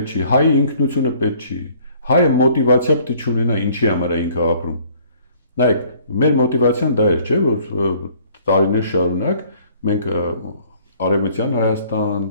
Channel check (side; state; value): both; inverted; correlation -0.58